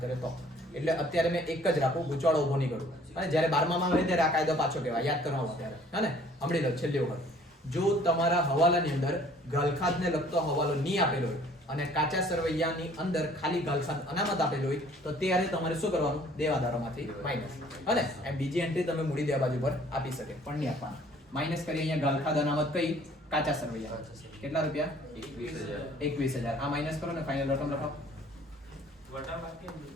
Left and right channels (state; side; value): normal; both; correlation 0.56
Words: કરે તો એટલે અત્યારે મેં એક જ રાખું ગુચવાડો ઉભો નહીં કરું અને જ્યારે 12મામાં હોય ત્યારે આ કાયદો પાછો કહેવાય યાદ કરવાનો ત્યારે હે ને સાંભળી લો છેલ્લી વખત જો તમારા હવાલાની અંદર ગાલખાદને લગતો હવાલો નહીં આપેલો હોય અને કાચા સરવૈયાની અંદર ખાલી ગાલખાદ અનામત આપેલો હોય તો ત્યારે તમારે શું કરવાનું દેવાદારોમાંથી માઈનસ અને એમ બીજી એન્ટ્રી તમે મૂડી દેવા બાજુ પર આપી શકે પણ નહીં આપવાના માઈનસ કરી અહીંયા ગાલખાદ અનામત કઈ કાચા સરવૈયા કેટલા રૂપિયા 21,000 આ માઈનસ કરો ને ફાઇનલ રકમ લખાવો